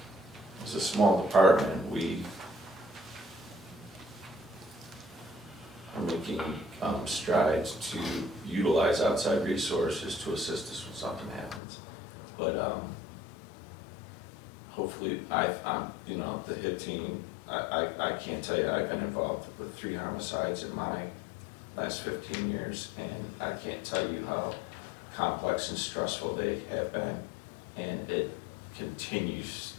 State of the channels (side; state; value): right; drops out; at 11.6 s